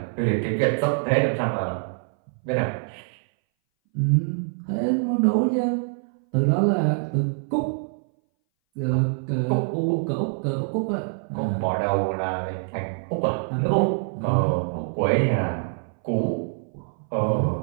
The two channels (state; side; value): silent; left; 60 dB below the other